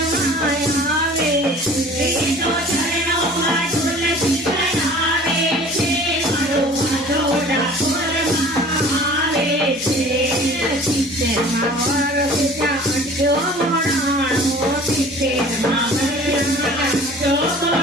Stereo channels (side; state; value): both; normal; correlation 0.46